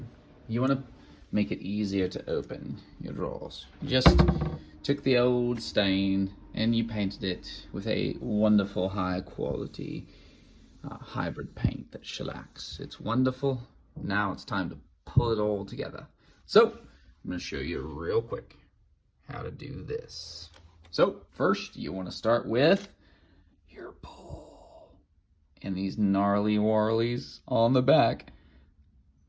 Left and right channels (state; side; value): identical; both; correlation 1.00